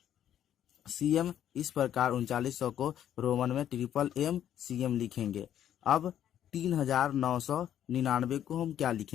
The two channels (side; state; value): right; quieter; 10.5 dB